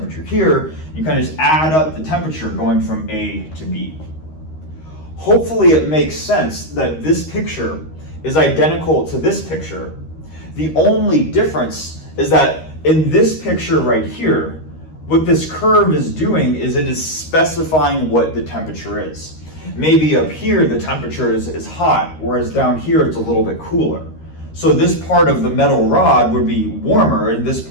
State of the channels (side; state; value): right; late; 13 ms